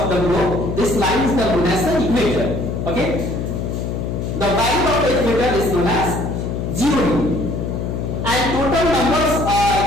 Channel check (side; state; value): left; noise; hum, 3 dB below the sound